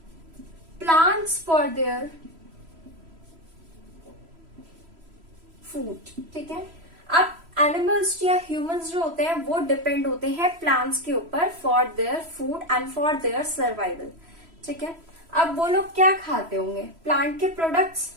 plants for their food. ठीक है, अब एनिमल्स या ह्यूमंस जो होते हैं वो डिपेंड होते हैं प्लांट्स के ऊपर for their food and for their survival. ठीक है, अब वो लोग क्या खाते होंगे? प्लांट के प्रोडक्ट्स.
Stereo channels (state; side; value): late; left; 3.0 ms